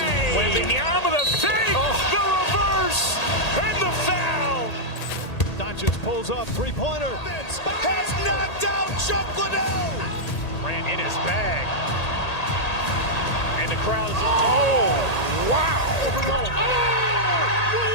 Wembanyama the save, the reverse, and the foul. Doncic pulls up, three-pointer. Has knocked out Chuck Liddell. Ran in his bag. And the crowd is, oh, wow.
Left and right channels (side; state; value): right; late; 1.8 ms